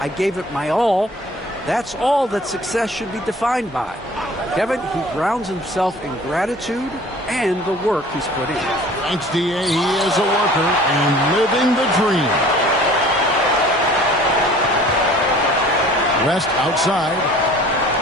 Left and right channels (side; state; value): both; normal; correlation 0.48